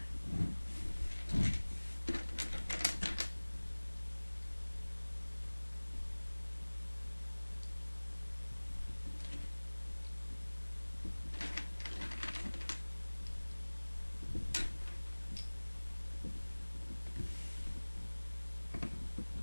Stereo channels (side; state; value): both; inverted; correlation -1.00